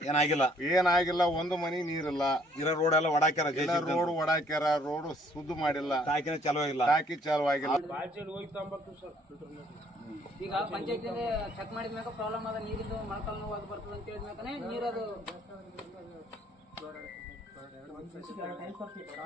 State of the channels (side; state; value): both; normal; correlation 0.63